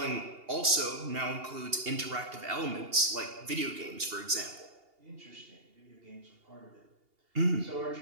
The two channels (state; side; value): late; left; 2.8 ms